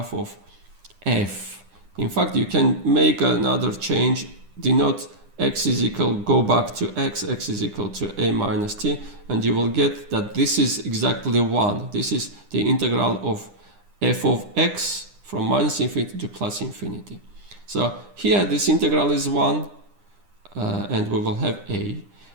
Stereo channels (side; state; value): left; late; 9.9 ms